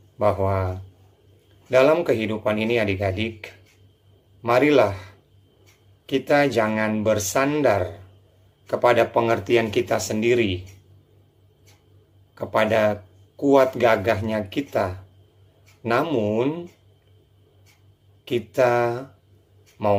bahwa dalam kehidupan ini adik-adik, marilah kita jangan bersandar kepada pengertian kita sendiri, kepada kuat gagahnya kita, namun kita mau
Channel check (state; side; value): identical; both; correlation 1.00